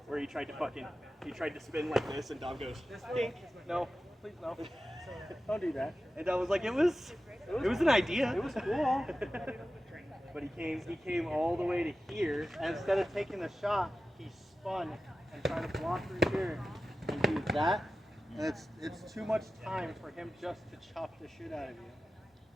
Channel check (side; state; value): both; normal; correlation 0.94